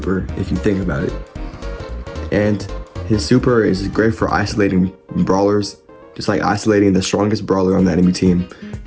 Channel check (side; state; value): both; identical; correlation 1.00